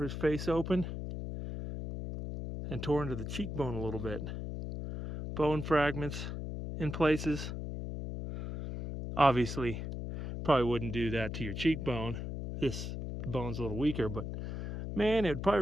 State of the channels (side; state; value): left; noise; hum, 5 dB below the sound